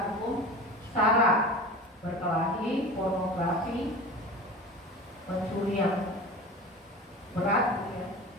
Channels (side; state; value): both; normal; correlation 0.33